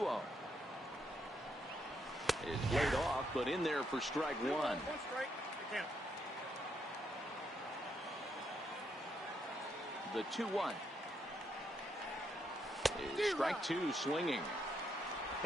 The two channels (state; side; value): normal; both; correlation 0.78